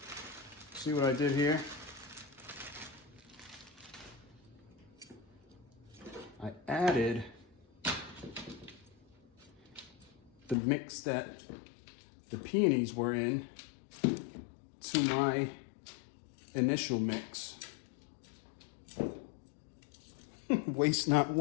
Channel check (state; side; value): drops out; right; at 10.6 s